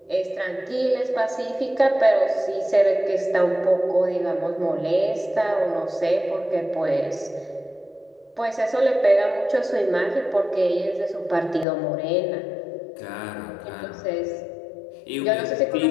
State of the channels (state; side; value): drops out; right; at 11.7 s